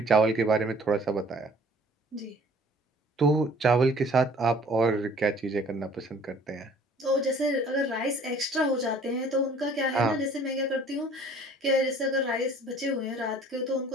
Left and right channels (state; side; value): normal; both; correlation 0.53